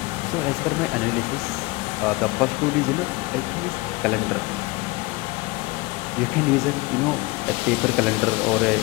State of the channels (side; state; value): right; quieter; 23.1 dB